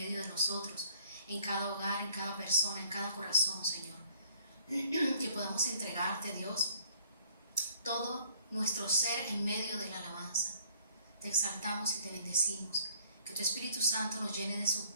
de nosotros, en cada hogar, en cada persona, en cada corazón, Señor. Que podamos entregarte, Dios, todo nuestro ser en medio de la alabanza. Te exaltamos y te bendecimos. Que tu Espíritu Santo nos llene de su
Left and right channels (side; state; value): both; inverted; correlation -0.59